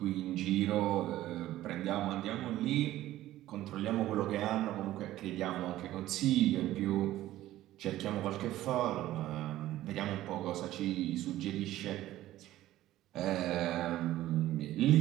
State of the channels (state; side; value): quieter; left; 14.7 dB